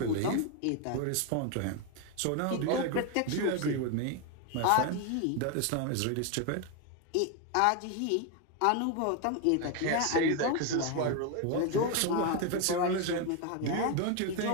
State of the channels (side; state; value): both; different; correlation 0.01